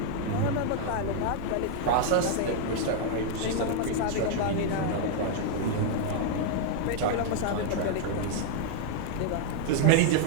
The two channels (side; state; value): both; different; correlation -0.01